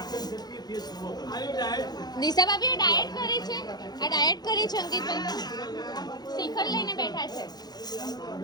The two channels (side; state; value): right; late; 0.19 ms